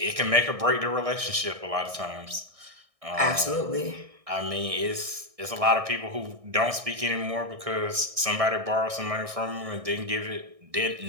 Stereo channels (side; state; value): left; late; 1.6 ms